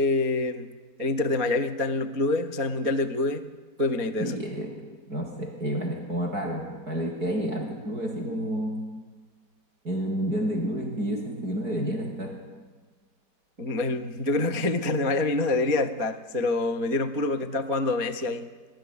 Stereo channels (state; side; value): late; left; 4.3 ms